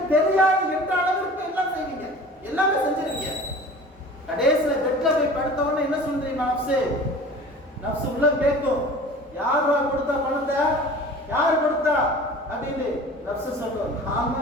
தெரியாது என்ற அளவிற்கு எல்லாம் செய்வீங்க, எல்லாமே செஞ்சிருக்கீங்க. கடைசியில பெட்ல போய் படுத்தவொடனே என்ன சொல்றீங்க? நஃப்ஸ் உள்ள கேட்கும், யாரா கொடுத்தா பணத்தை, யார் கொடுத்தா அப்படின்னு. நஃப்ஸ் சொல்லும், நான்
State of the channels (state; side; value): normal; both; correlation 0.41